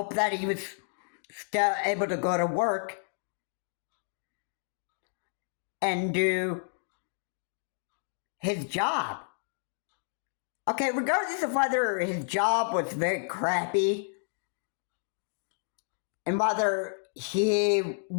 that he was still able to go to work and do his job. Okay, regardless of whether his job was very crappy and whether he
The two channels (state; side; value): silent; right; digital silence